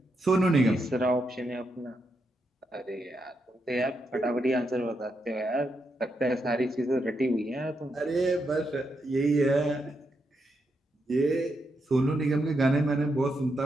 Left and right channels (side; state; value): both; normal; correlation 0.82